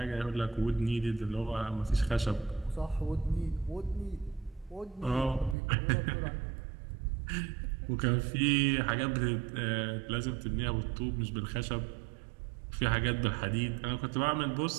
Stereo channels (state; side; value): drops out; left; at 5.6 s